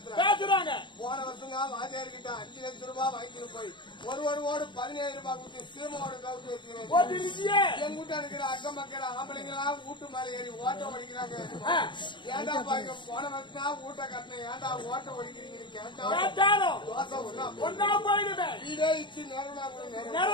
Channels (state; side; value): late; right; 0.23 ms